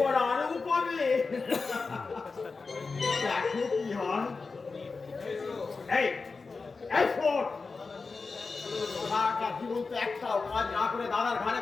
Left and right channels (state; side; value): quieter; right; 4.3 dB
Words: আরো পাবে, দেখো কি হয়। এই এই শোন, সারাটা জীবন তো একটাও কাজ না করে দাদার ঘরে